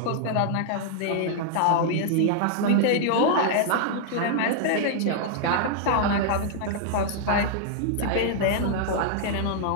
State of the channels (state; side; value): different; both; correlation -0.01